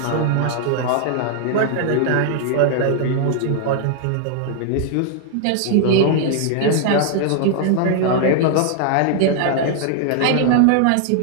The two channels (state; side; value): different; both; correlation 0.00